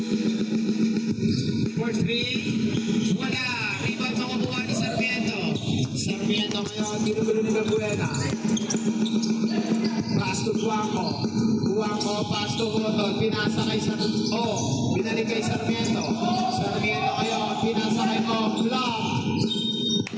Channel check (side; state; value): both; identical; correlation 1.00